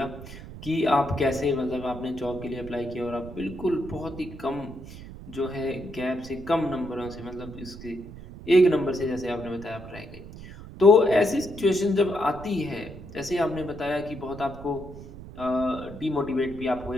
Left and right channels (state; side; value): noise; right; rumble, 14 dB below the sound